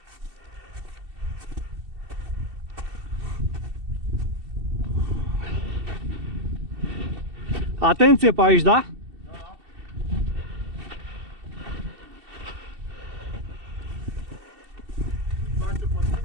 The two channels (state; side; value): late; left; 2.7 ms